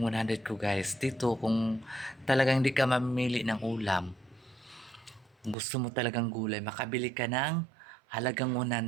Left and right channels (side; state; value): left; drops out; at 5.6 s